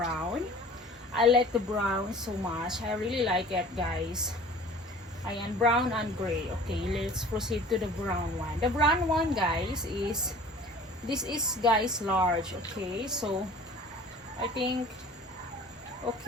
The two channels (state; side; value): normal; both; correlation 0.46